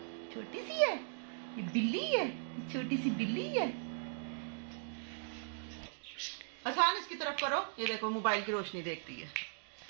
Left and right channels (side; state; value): left; silent; digital silence